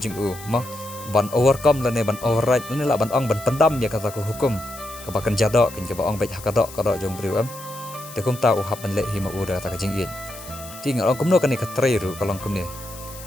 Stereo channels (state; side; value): noise; left; hiss, 16 dB below the sound